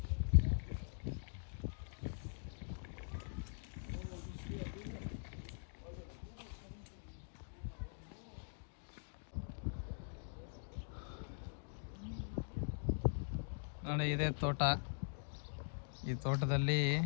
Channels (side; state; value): right; silent; digital silence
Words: ನೋಡಿ, ಇದೇ ತೋಟ. ಈ ತೋಟದಲ್ಲಿ